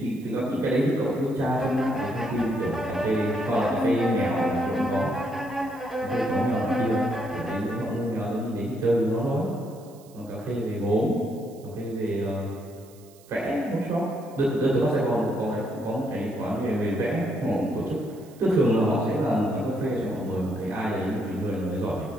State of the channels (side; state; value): right; noise; hiss, 26 dB below the sound